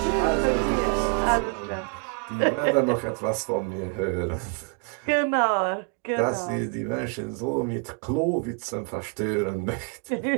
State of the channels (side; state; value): left; quieter; 36.9 dB